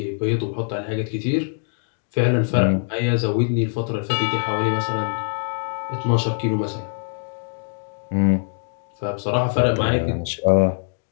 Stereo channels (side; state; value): right; silent; 61 dB below the other